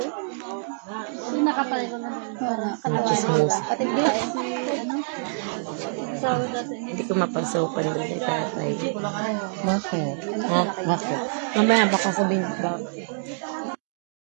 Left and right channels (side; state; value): left; silent; digital silence